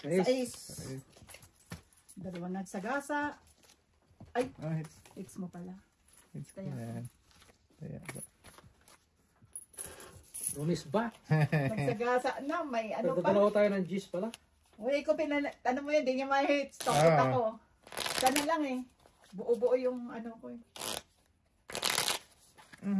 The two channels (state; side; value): identical; both; correlation 1.00